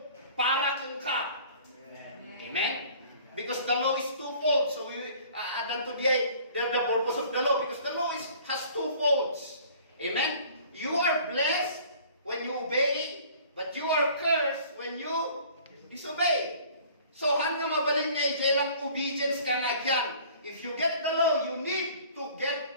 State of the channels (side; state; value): both; inverted; correlation -0.50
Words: para kung ka. Amen? Because the law is twofold. So we add to the purpose of the law, because the law has two folds. Amen? You are blessed when you obey, but you are cursed when you disobey. So, hanggang mabaling nga lang obedience ka nga dyan. If you get the law, you need to